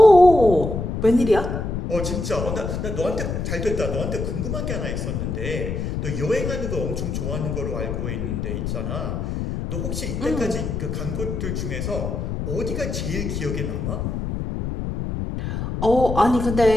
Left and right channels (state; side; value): noise; left; rumble, 3 dB below the sound